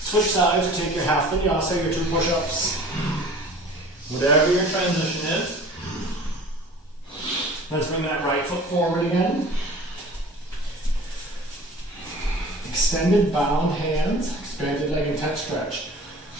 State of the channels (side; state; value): both; normal; correlation 0.44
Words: Switch sides or take your half vinyasa, your 2 push-ups. Whatever your transition is. Let's bring that right foot forward again. Extended bound hands, expanded leg and touch stretch.